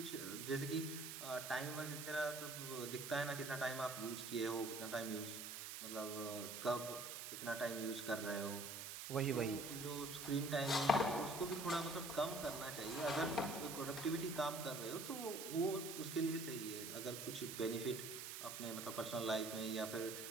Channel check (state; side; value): noise; right; hiss, 6 dB below the sound